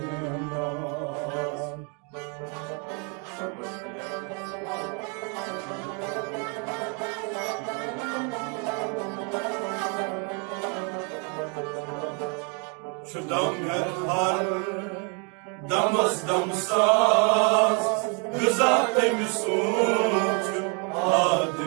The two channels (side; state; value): left; quieter; 36.1 dB